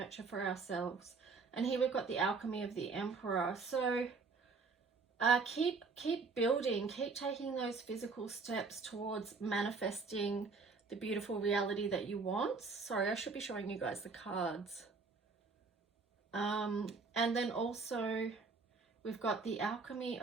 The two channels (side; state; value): left; quieter; 4.5 dB